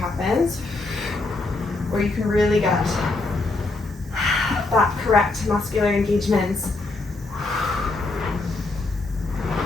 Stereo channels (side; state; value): right; quieter; 3.2 dB